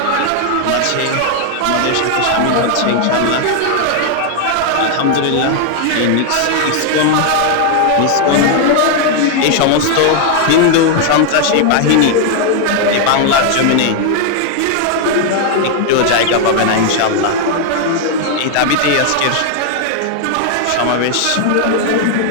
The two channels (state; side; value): different; both; correlation 0.00